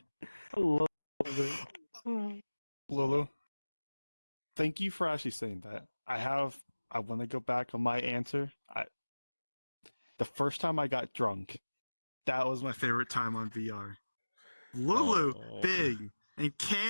I love it. Lulu, thank you for actually saying that. I want to go back on my answer. The first time I got drunk, that was my favorite time on VR. Lulu, Oh. Big, and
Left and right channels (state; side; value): inverted; both; correlation -1.00